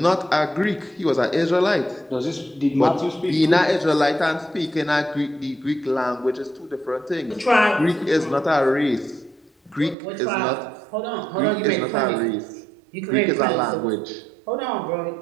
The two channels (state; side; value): drops out; left; at 10.0 s